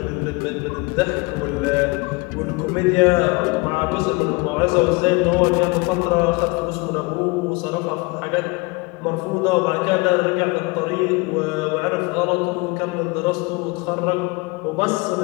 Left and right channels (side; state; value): right; quieter; 26.0 dB